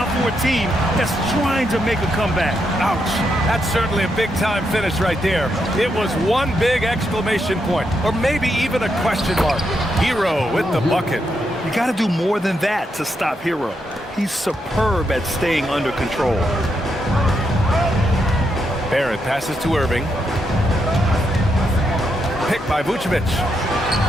for a team that's trying to make a comeback. Ouch. That's certainly a big-time finish right there. It was one big exclamation point, or maybe even a question mark. Hero with the bucket. You got to do more than that to stop Hero. He's superb at staying under control. Barrett passes to Irving. Picked by Vucevic.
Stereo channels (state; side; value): normal; both; correlation 0.81